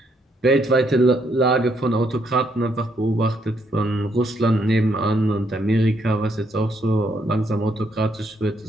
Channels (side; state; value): both; normal; correlation 0.73